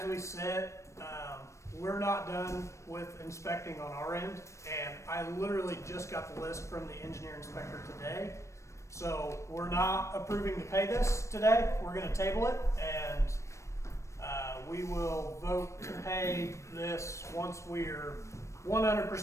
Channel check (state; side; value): late; right; 0.14 ms